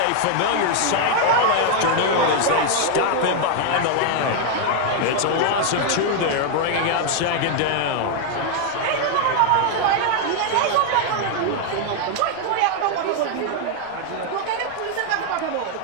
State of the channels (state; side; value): different; both; correlation 0.00